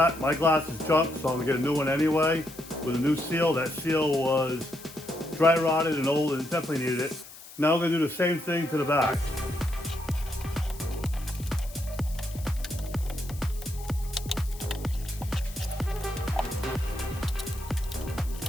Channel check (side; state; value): left; noise; hiss, 18 dB below the sound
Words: My glass is junk, so I'm going to get a new one anyway with a new seal. That seal was dry rotted and old and definitely needed it. Now we're going to do the same thing to the back.